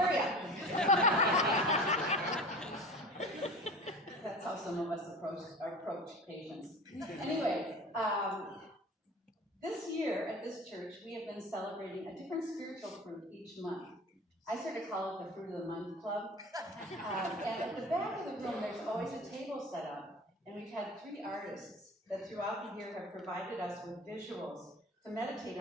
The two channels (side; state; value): both; normal; correlation 0.37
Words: up. That's how some of us approach patience. Anyway, this year at this church, we have been celebrating a different spiritual fruit each month. I sort of call it the Fruit of the Month Club. And at the back of the room, there's always a table set up. And we've had 3 artists that throughout the year have provided us with visuals to meditate